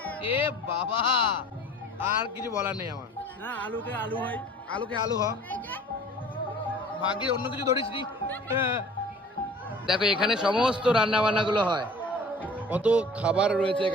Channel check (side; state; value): both; normal; correlation 0.47